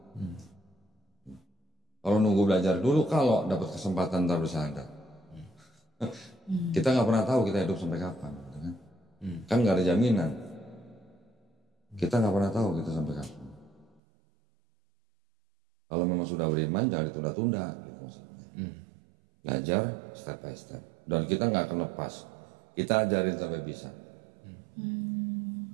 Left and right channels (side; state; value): left; drops out; at 14.0 s